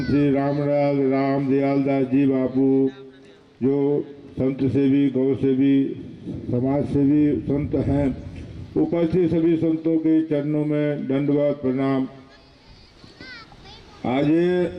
श्री रामलाल राम दयाल दास जी बापू, जो संत सेवी गौ सेवी समाज सेवी संत हैं, उपस्थित सभी संतों के चरणों में दंडवत प्रणाम। आज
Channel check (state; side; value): identical; both; correlation 1.00